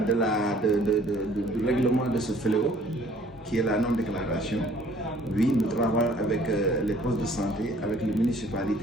du règlement de ce fléau, qui est la non-déclaration. Oui, nous travaillons avec les postes de santé, avec les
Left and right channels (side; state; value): both; normal; correlation 0.57